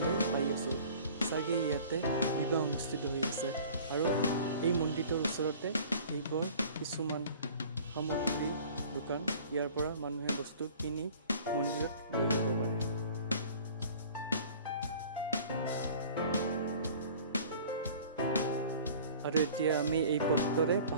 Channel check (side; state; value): both; inverted; correlation -0.47